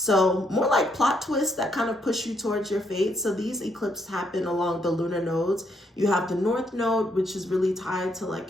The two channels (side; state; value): both; normal; correlation 0.74